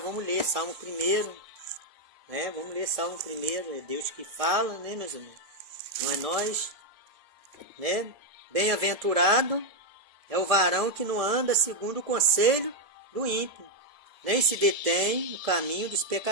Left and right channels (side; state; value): left; late; 1.7 ms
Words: ler Salmo 1, né? Vamos ler Salmo 1, é Deus que fala, né, meus irmãos? Não é nós, né? Bem-aventurado é o varão que não anda segundo o conselho do ímpio, nem se detém no caminho dos